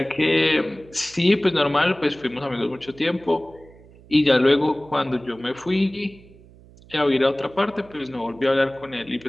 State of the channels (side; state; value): right; noise; hum, 24 dB below the sound